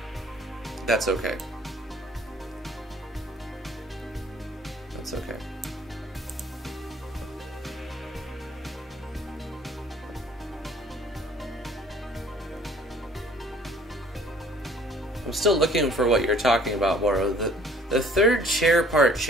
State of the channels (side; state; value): both; normal; correlation 0.54